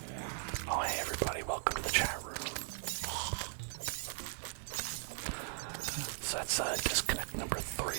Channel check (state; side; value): silent; left; digital silence